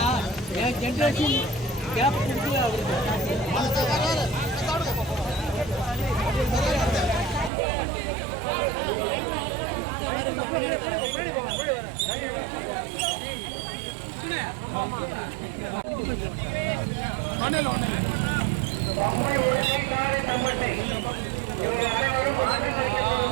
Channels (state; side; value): drops out; left; at 7.5 s